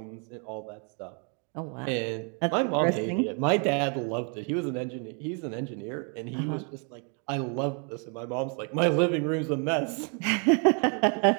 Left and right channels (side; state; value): left; quieter; 38.8 dB